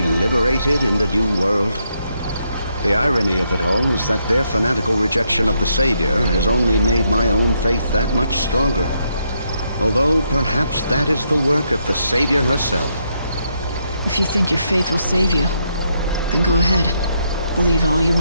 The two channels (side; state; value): both; inverted; correlation -0.77